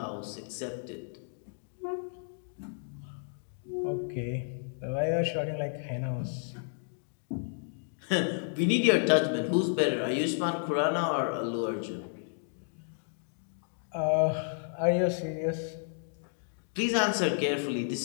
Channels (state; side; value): silent; right; digital silence